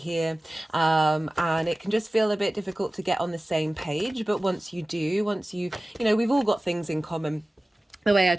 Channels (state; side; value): normal; both; correlation 0.97